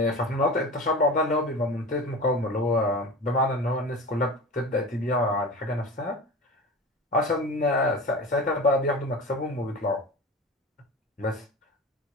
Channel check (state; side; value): normal; both; correlation 0.33